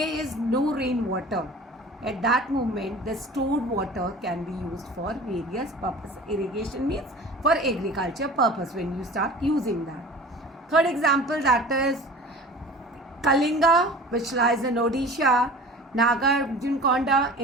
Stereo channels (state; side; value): normal; both; correlation 0.41